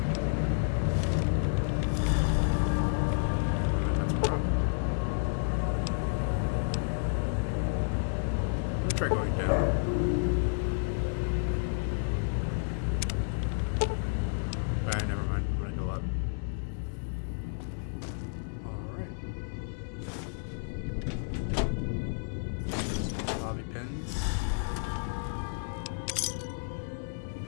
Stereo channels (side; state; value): right; silent; digital silence